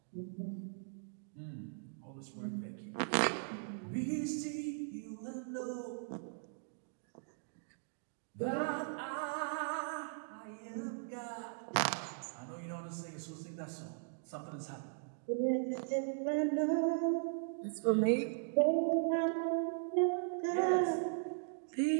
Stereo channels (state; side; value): silent; left; digital silence